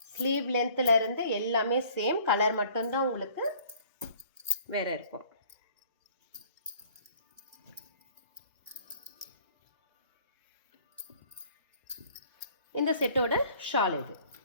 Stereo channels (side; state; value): both; inverted; correlation -0.54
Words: ஸ்லீவ் லென்த்ல இருந்து எல்லாமே சேம். கலர் மட்டும்தான் உங்களுக்கு வேற இருக்கும். இந்த செட்டோட ஷால் இது.